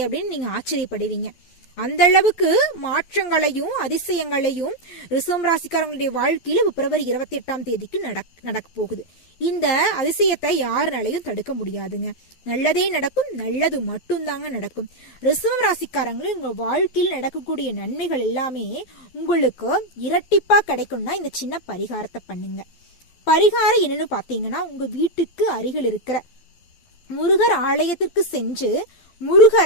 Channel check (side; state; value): right; late; 12 ms